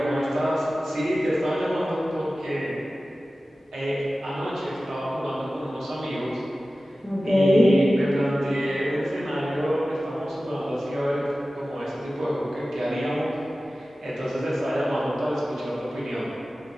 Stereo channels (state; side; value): normal; both; correlation 0.96